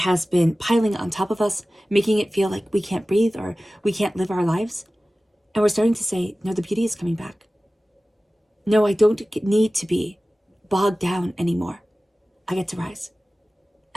been piling on top of us, making it feel like we can't breathe or we can't live our lives. And we're starting to say, no, the beauty is coming back. No, I don't need to be bogged down anymore. I get to rise.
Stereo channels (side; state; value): both; normal; correlation 0.96